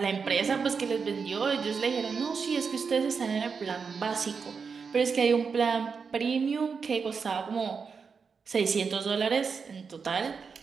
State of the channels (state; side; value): quieter; left; 5.6 dB